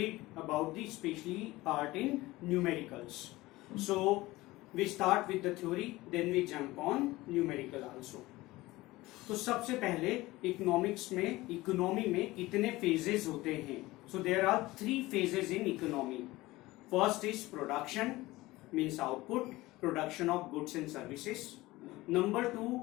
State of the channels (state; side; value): quieter; right; 19.2 dB